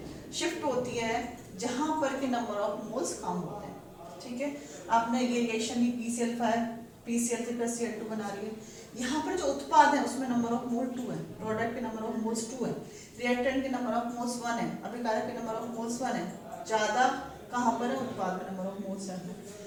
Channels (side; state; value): both; identical; correlation 1.00